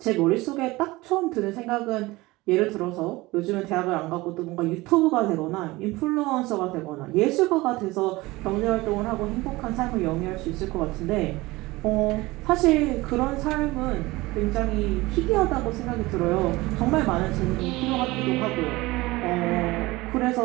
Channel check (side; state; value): left; quieter; 20.6 dB